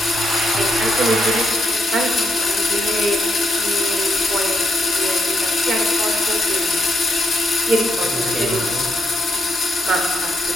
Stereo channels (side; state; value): both; normal; correlation 0.78